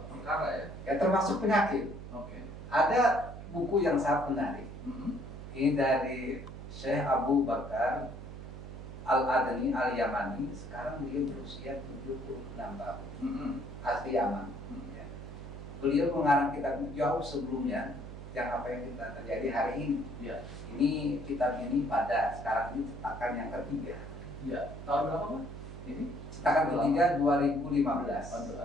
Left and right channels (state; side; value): noise; right; hum, 11 dB below the sound